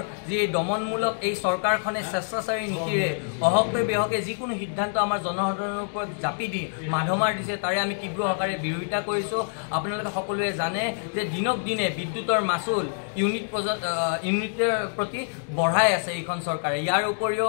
যি দমনমূলক এই চৰকাৰখনে স্বেচ্ছাচাৰী নীতিৰে অহকে বেহকে যিকোনো সিদ্ধান্ত আমাৰ জনসাধাৰণৰ ওপৰত জাপি দি মাধমাৰ দিছে তাৰে আমি তীব্ৰ আকাৰে বিৰোধিতা কৰিছোঁ। আপোনালোকে সকলোৱে জানে যে দিনক দিনে বিদ্যুতৰ মাচুল ইউনিটৰ প্ৰতি বঢ়াই আছে এইখন চৰকাৰে। ইয়াৰ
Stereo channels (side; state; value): right; silent; digital silence